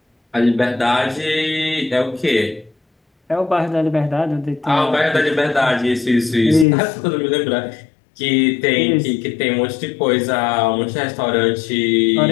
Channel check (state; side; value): drops out; right; at 6.7 s